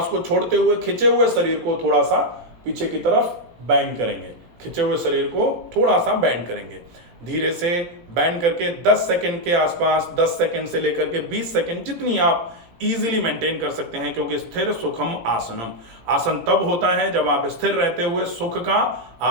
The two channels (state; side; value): late; left; 17 ms